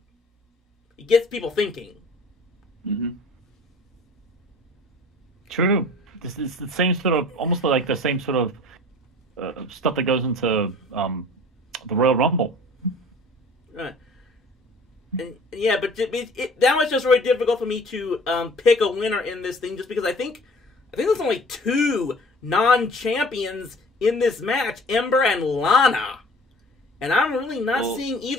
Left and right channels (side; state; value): both; normal; correlation 0.47